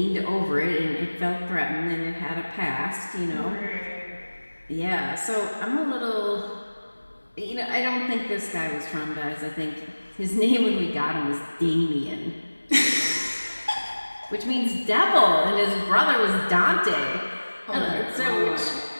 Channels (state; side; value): inverted; both; correlation -1.00